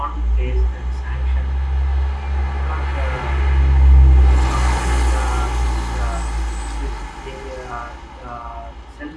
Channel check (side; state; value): both; identical; correlation 1.00